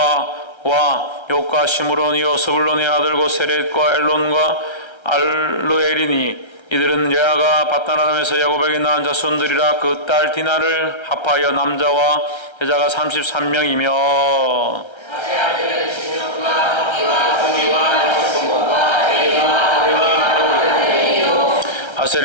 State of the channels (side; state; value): right; late; 1.3 ms